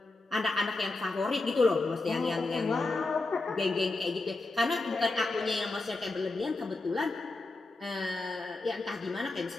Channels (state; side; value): quieter; right; 3.3 dB